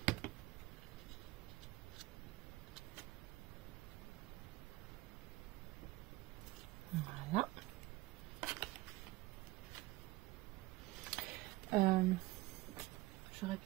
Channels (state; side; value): quieter; left; 19.4 dB